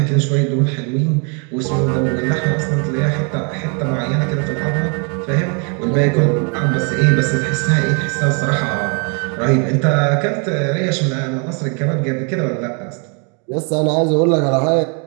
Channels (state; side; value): quieter; left; 36.3 dB